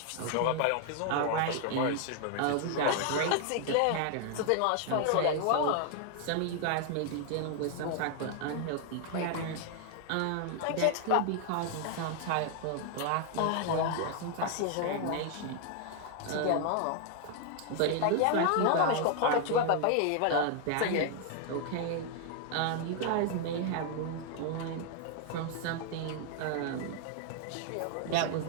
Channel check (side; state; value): both; different; correlation 0.00